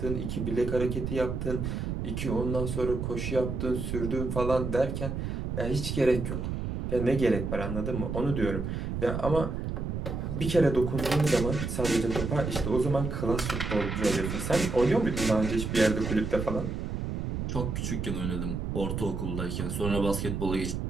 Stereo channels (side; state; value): right; noise; rumble, 3 dB below the sound